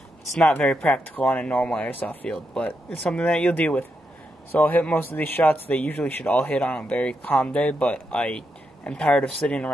it's not very practical on a normal airsoft field, but it's something that you'll deal with. So I'll hit most of these shots. They usually should all hit on a very calm day, but I am tired of sitting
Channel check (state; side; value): normal; both; correlation 0.83